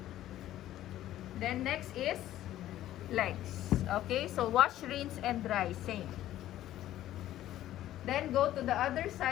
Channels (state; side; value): quieter; right; 13.4 dB